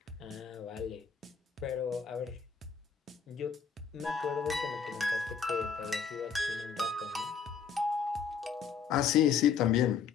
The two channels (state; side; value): quieter; right; 6.4 dB